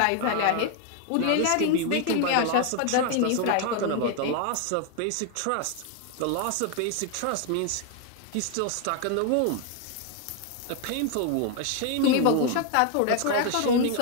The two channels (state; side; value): different; both; correlation 0.01